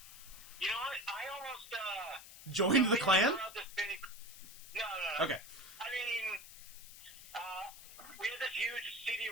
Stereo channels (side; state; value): left; noise; hiss, 16 dB below the sound